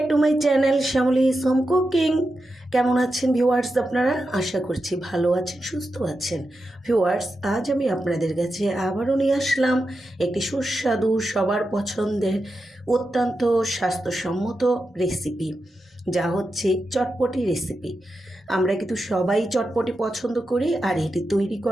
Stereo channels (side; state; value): both; normal; correlation 0.89